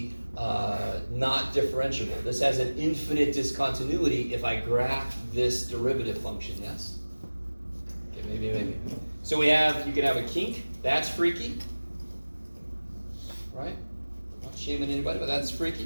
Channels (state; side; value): inverted; both; correlation -1.00